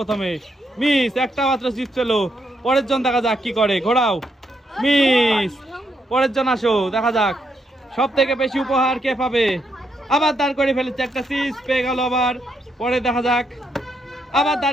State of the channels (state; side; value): normal; both; correlation 0.78